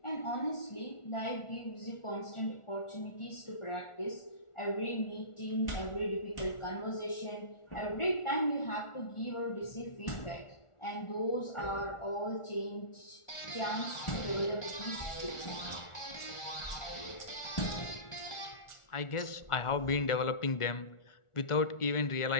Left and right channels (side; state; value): right; late; 1.4 ms